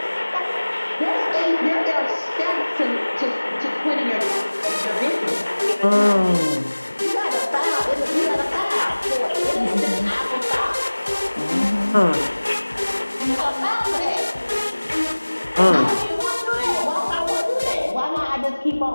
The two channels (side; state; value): both; inverted; correlation -1.00